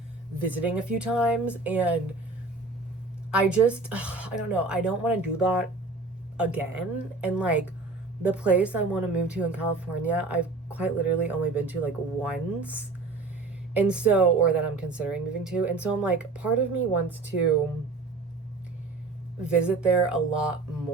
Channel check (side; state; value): left; quieter; 3.6 dB